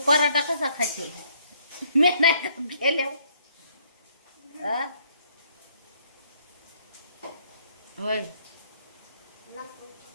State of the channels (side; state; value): both; inverted; correlation -0.66